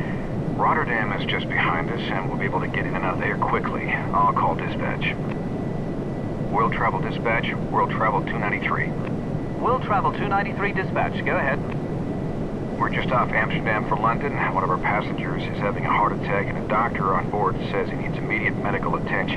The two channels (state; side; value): identical; both; correlation 1.00